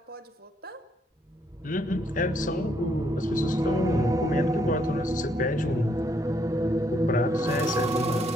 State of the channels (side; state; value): both; normal; correlation 0.72